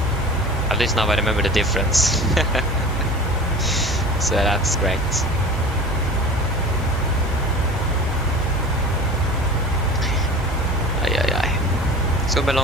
At least now I remember the difference. So that's great. It's gonna be a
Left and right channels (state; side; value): normal; both; correlation 0.37